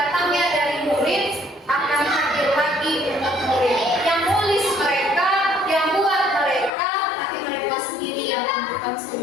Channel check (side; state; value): right; drops out; at 6.7 s